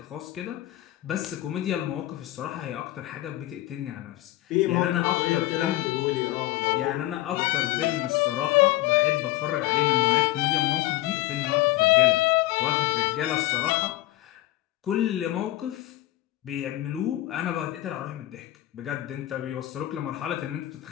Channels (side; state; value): right; quieter; 16.3 dB